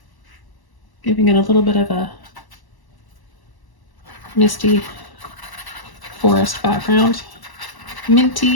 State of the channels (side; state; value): right; late; 1.0 ms